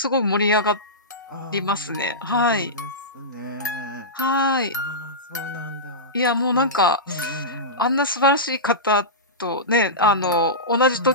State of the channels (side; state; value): both; normal; correlation -0.16